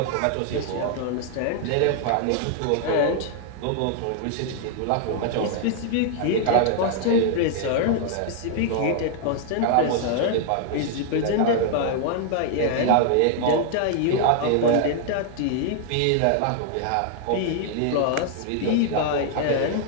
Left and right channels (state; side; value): different; both; correlation 0.00